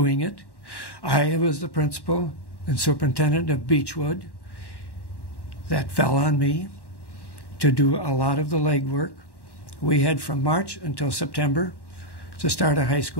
it. I was the principal and superintendent of Beechwood. That fell on me to do a lot of the legwork. We had from March until September to start a high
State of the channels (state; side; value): late; right; 1.1 ms